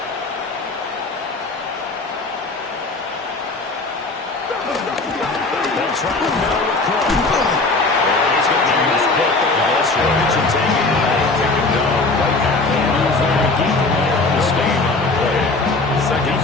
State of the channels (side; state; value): right; quieter; 3.4 dB